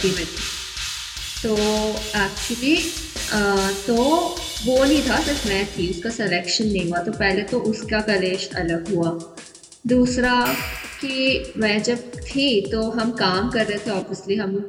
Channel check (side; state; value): both; identical; correlation 1.00